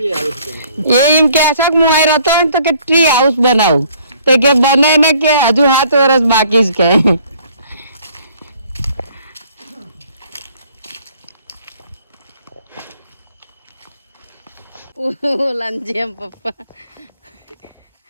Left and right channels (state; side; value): inverted; both; correlation -0.59